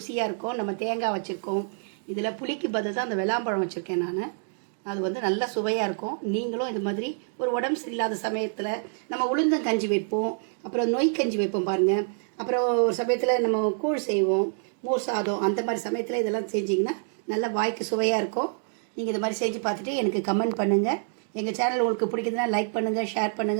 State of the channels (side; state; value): left; silent; digital silence